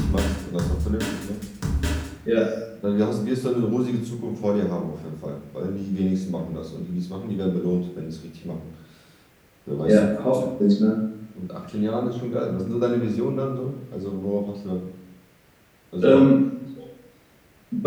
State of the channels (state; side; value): identical; both; correlation 1.00